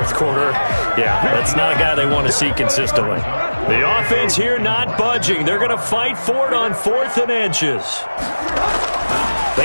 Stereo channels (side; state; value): both; inverted; correlation -1.00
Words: quarter. Yeah. That's not a guy they want to see consistently. The offense here not budging. They're going to fight for it on 4th and inches.